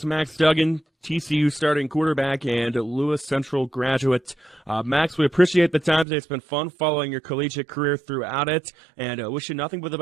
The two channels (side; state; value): left; drops out; at 6.1 s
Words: Max Duggan, TCU starting quarterback and Lewis Central graduate. Max, we appreciate the time today. It's been fun following your collegiate career throughout it, and wish you nothing but the